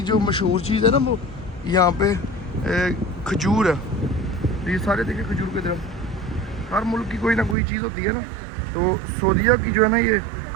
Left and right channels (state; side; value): drops out; left; at 7.6 s